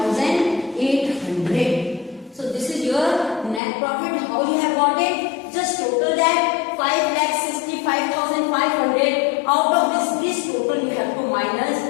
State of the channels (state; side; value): drops out; right; at 3.6 s